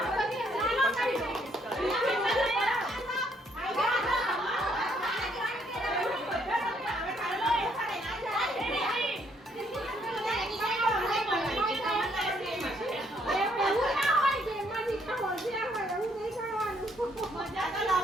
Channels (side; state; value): both; normal; correlation 0.69